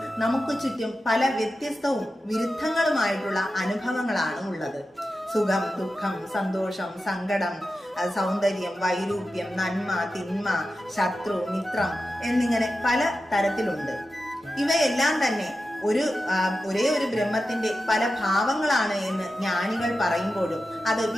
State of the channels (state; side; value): normal; both; correlation 0.92